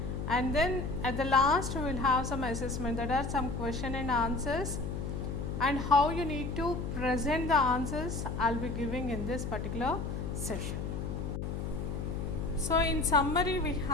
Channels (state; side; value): noise; left; hum, 4 dB below the sound